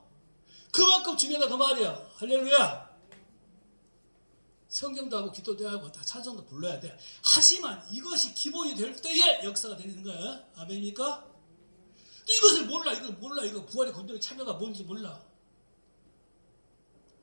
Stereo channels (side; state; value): both; inverted; correlation -1.00